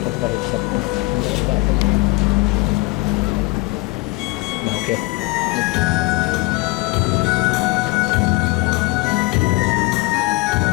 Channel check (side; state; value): right; quieter; 22.5 dB